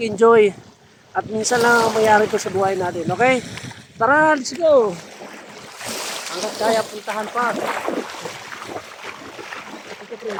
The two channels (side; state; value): both; identical; correlation 1.00